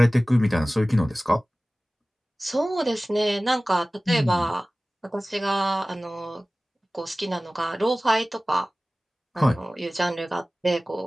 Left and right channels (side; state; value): both; normal; correlation 0.97